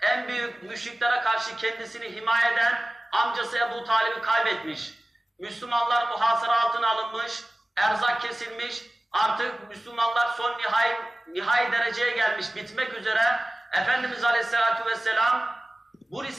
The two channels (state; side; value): normal; both; correlation 0.97